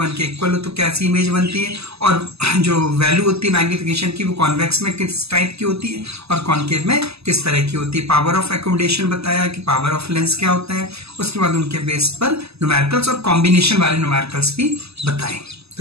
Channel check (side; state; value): left; late; 0.79 ms